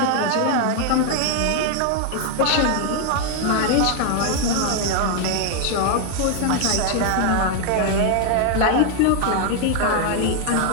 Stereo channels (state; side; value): different; both; correlation 0.00